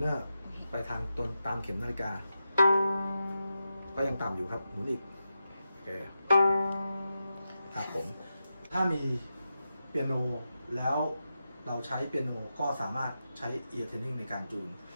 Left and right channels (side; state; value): both; inverted; correlation -0.89